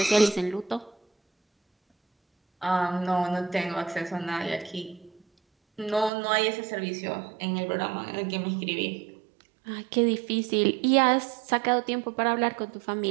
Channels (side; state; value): left; drops out; at 6.1 s